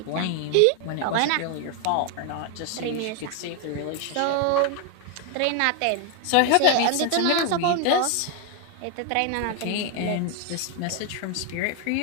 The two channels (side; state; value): both; different; correlation 0.01